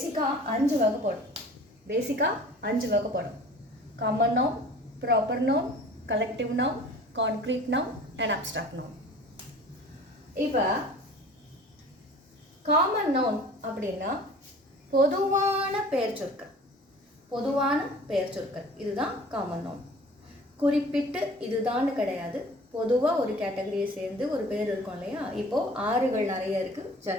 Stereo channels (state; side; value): normal; both; correlation 0.45